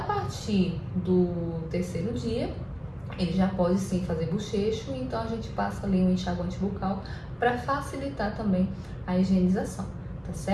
do 3º dia, ele já pode sim fazer bochecho, então a gente passa ali um enxaguante bucal para facilitar também a higienização, tá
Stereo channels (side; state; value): both; identical; correlation 1.00